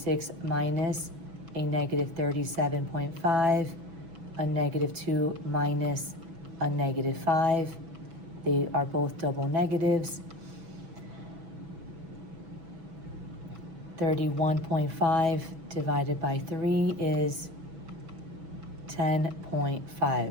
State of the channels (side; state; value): left; late; 6.1 ms